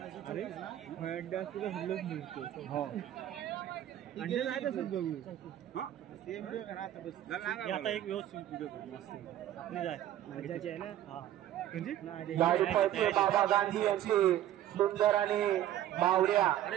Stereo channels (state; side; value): quieter; left; 12.3 dB